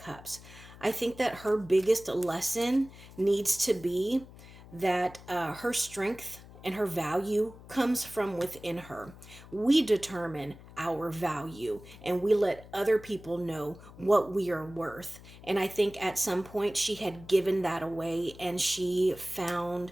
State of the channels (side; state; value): left; noise; hum, 19 dB below the sound